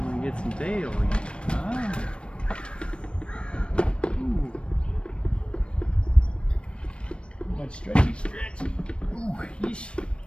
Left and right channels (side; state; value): right; late; 0.058 ms